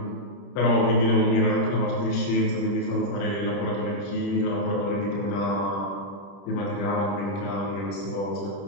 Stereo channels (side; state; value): right; late; 30 ms